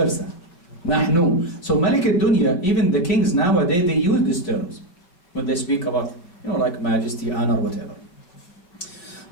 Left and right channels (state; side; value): late; right; 5.3 ms